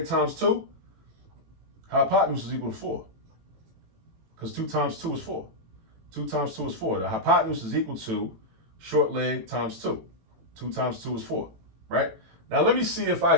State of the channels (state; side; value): late; left; 18 ms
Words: times 2, hypotenuse is equal to 4. Because 2 times 2 is 4. 2 times 2 is 4. The hypotenuse is equal to short leg times 2. 2 times 2 is 4, right? Now let me see if I